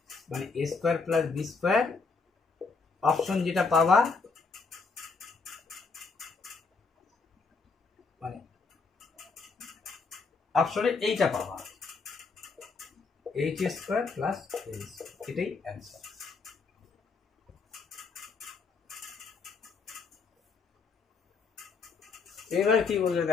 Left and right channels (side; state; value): right; quieter; 4.6 dB